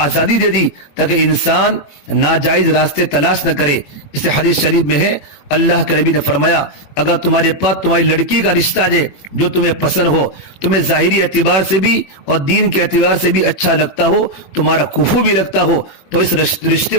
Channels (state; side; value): late; right; 21 ms